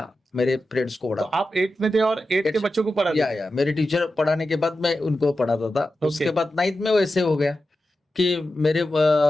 मेरे फ्रेंड्स को तो पढ़ाता। आप 8 में थे और 8 के बच्चों को पढ़ाते थे। या मेरे टीचर पढ़ाने के बाद मैं उनको पढ़ाता था। ओके। उसके बाद 9th में वैसे हो गया कि मेरे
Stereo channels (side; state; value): both; normal; correlation 0.91